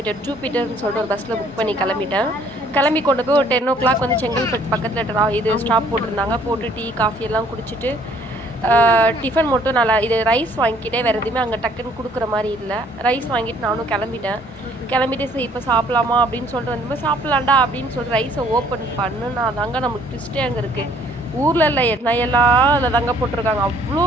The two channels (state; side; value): normal; both; correlation 0.60